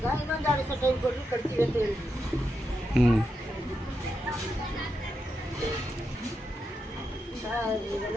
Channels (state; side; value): normal; both; correlation 0.85